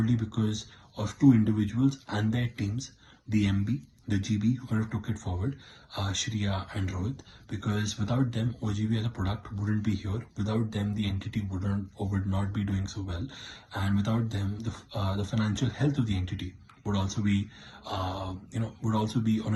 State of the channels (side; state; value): both; identical; correlation 1.00